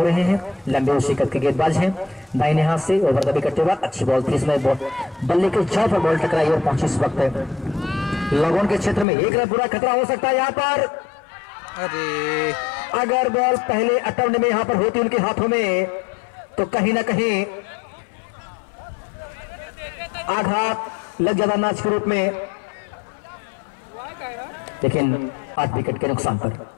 रहे हैं, लंबे शिकत के गेंदबाज हैं, दाहिने हाथ से ओवर द विकेट के बाद अच्छी बॉल थी, इसमें बल्ले के जड़ पर बॉल टकराई और पहुंची इस वक्त लगोन के क्षेत्र में 1 रन पूरा खतरा हो सकता है यहाँ पर। अरे अगर बॉल पहले अटेम्प्ट में यहाँ पर होती उनके हाथों में तो कहीं ना कहीं आघात लग जाता मैच के रूप में, लेकिन 8 विकेट के नुकसान पर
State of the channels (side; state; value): right; drops out; at 9.1 s